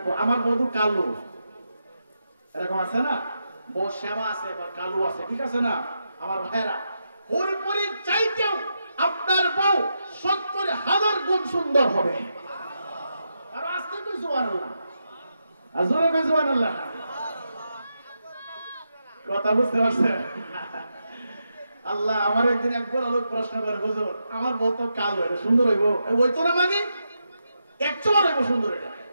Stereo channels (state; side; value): inverted; both; correlation -0.85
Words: আমার বধূ কালো, এরকম আছে না? বউ শ্যামা আছে বা কালু আছে, ঠিক আছে না আমার ভাইরা? হুরপুরির চাইতেও আপনার বউ 70,000 গুণ সুন্দর হবে। আর আজকে তো সুবহানাল্লাহ, আজরে কই সুবহানাল্লাহ, কথা বুঝতে পারছেন? আল্লাহ আমার একদিন এক বড় লোক প্রশ্ন করে, হুজুর আমার বউ তো কালো, এটা সুন্দর হইব? ওই তো না, মানে 100 হইব সুন্দর। এটা